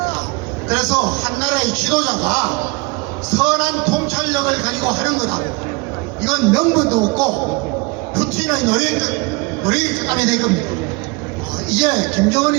그래서 한 나라의 지도자가 선한 통찰력을 가지고 하는 거다고, 이건 명분도 없고 푸틴의 노래감이 될 겁니다. 이제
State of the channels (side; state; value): left; quieter; 27.2 dB